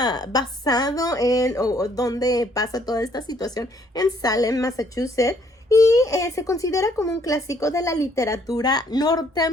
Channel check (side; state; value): both; normal; correlation 0.66